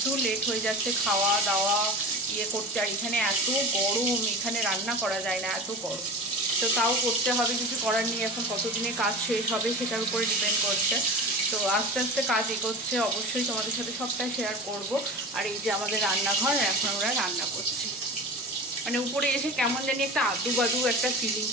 লেট হয়ে যাচ্ছে খাওয়া দাওয়া করতে। আর এখানে এত গরম, এখানে রান্না করা যায় না, এত গরম। তো তাও করতে হবে, কিছু করার নেই। এখন কতদিনে কাজ শেষ হবে সেটার উপরে ডিপেন্ড করছে। তো আস্তে আস্তে কাজ এগোচ্ছে, অবশ্যই তোমাদের সাথে সবটাই শেয়ার করব। আর এই যে আমাদের রান্নাঘর, এখন আমরা রান্না করছি। মানে উপরে এসে কেমন জানি একটা আদু বাদু একটা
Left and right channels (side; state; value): both; normal; correlation 0.32